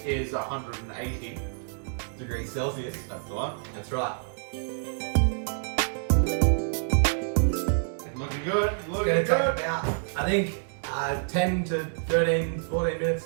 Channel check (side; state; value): left; silent; digital silence